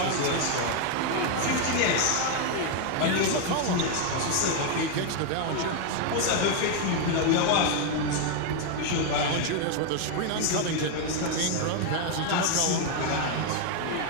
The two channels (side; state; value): both; different; correlation 0.01